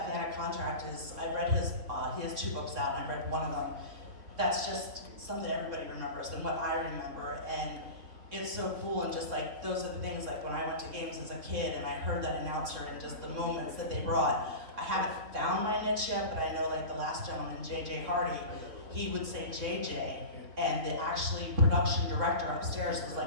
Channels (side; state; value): left; late; 3.6 ms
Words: Fan a Contract is, I've read he has 2 books out, and I've read one of them. That's just something everybody remembers and what I remember, and it's so cool. And just like, those are the things, like when I went to games as a kid and I heard that announcer and just the moments that they brought. I haven't found my niche yet, but I know, like the last gentleman, JJ Hardy, he would say JJ, and the actually production director upstairs was